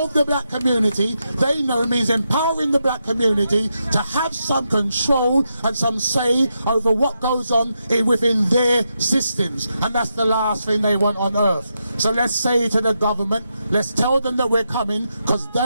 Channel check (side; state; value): both; inverted; correlation -0.84